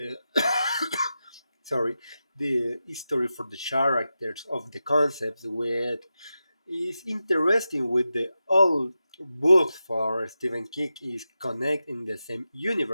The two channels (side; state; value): both; inverted; correlation -0.91